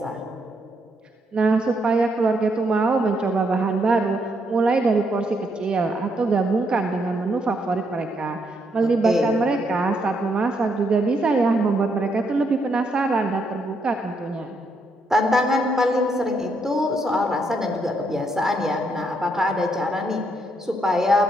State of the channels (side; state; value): both; normal; correlation 0.76